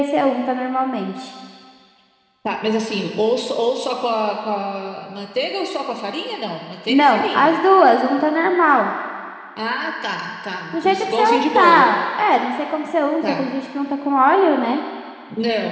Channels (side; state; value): both; identical; correlation 1.00